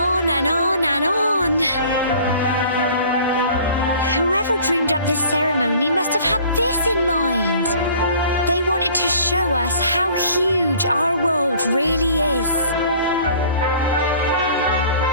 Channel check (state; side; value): inverted; both; correlation -0.50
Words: and on and on. Whoever dreamed up this ceremony must have had this in mind. They wanted to show us how huge our world really is.